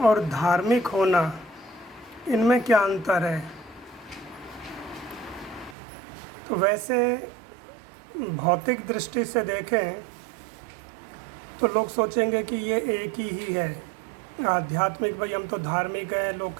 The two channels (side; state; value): left; drops out; at 5.8 s